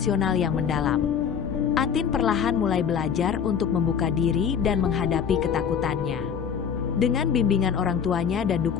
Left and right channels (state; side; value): quieter; right; 7.4 dB